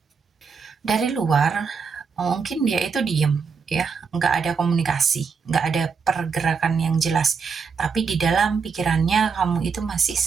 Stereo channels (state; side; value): quieter; left; 5.6 dB